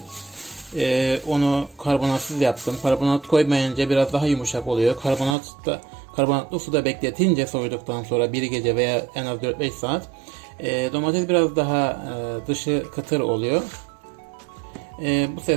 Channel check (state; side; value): drops out; left; at 5.4 s